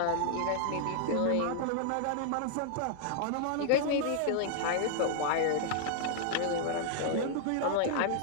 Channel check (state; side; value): different; both; correlation -0.01